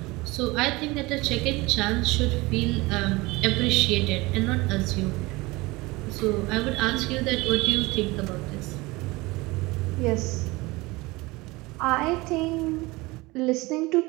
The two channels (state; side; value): quieter; left; 22.3 dB